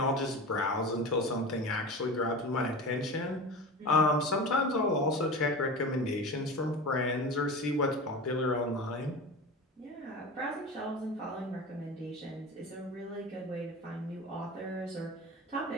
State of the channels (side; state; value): both; normal; correlation 0.30